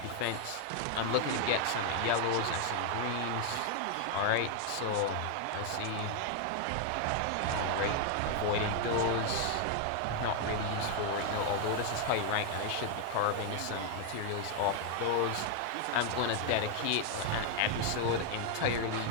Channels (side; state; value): both; different; correlation 0.00